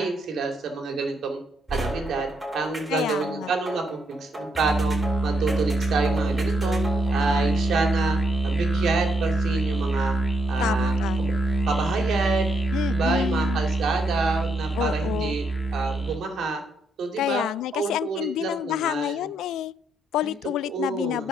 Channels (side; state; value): both; normal; correlation 0.77